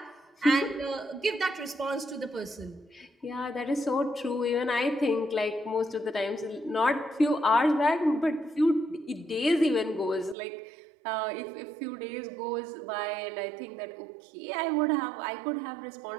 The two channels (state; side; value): drops out; left; at 10.4 s